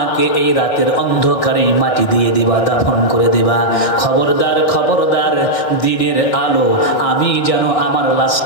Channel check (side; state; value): right; late; 1.6 ms